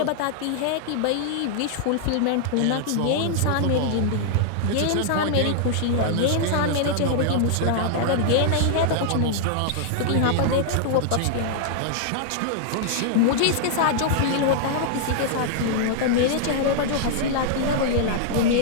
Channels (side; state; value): both; different; correlation -0.01